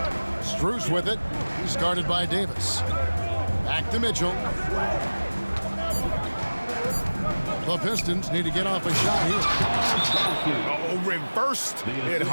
Strus with it. He's guarded by Davis. Back to Mitchell. The Pistons need to get off a shot here. Oh, reversed it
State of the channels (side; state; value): both; inverted; correlation -1.00